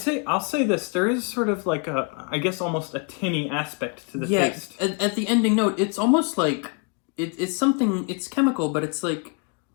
I'll say this. There is sort of like I guess almost a tinny aspect to the taste. At the ending note, it's almost like it's something. It's chemical, but it's like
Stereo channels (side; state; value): right; quieter; 35.1 dB